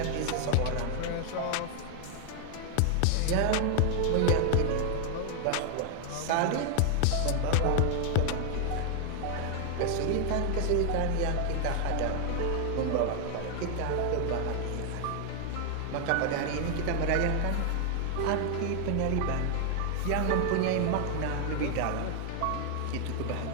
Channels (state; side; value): different; both; correlation 0.00